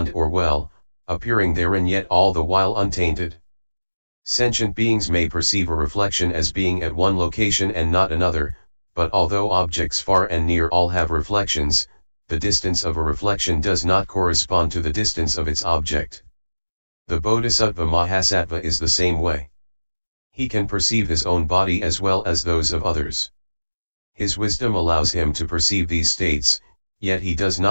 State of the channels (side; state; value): both; inverted; correlation -1.00